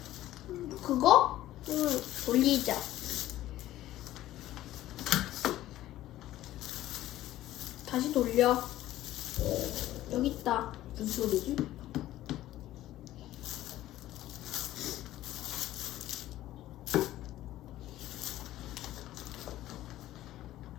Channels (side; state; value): right; quieter; 14.5 dB